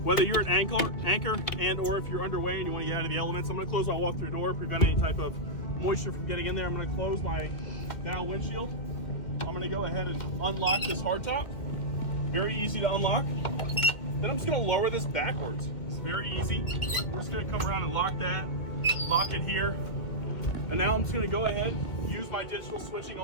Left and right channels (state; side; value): late; right; 2.1 ms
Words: Whether you're an anchor and or if you're underway and you wanna get out of the elements, I'm gonna close my walk-through door, prevent any type of moisture from getting in there. I'm gonna close my bow windshield. I'm gonna go ahead and unlock this hardtop. Very easy to unlock. Then I'm just gonna lower this backwards. It's very easy. We're just gonna come around and lock that, lock it here. And now I'm just gonna go ahead, use my digital switching